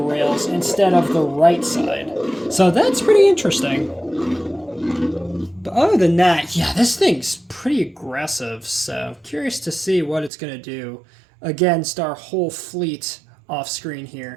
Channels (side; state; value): left; drops out; at 10.3 s